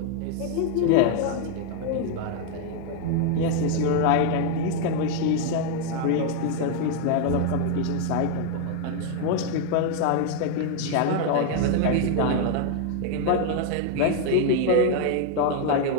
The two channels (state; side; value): different; both; correlation 0.00